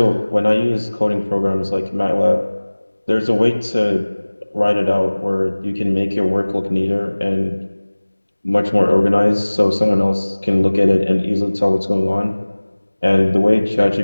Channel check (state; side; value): inverted; both; correlation -1.00